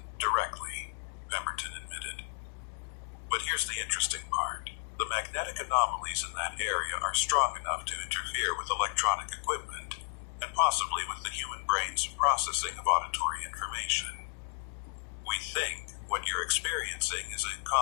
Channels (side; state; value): right; silent; digital silence